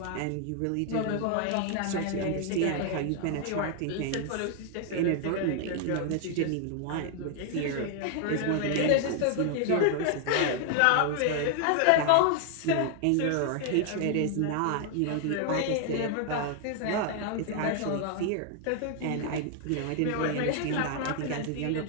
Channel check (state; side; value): different; both; correlation 0.00